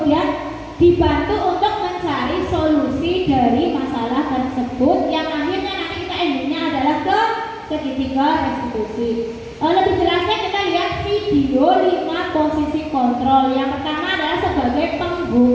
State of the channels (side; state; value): both; identical; correlation 1.00